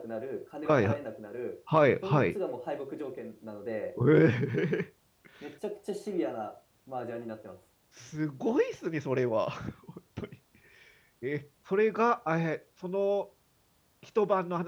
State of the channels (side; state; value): both; identical; correlation 1.00